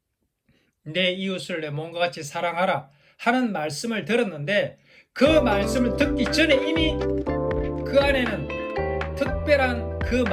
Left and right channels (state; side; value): identical; both; correlation 1.00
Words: 내 이웃을 내 몸과 같이 사랑하라 하는 말씀을 들었는데 그 말씀을 듣기 전에 이미 그 안에는 특별한, 그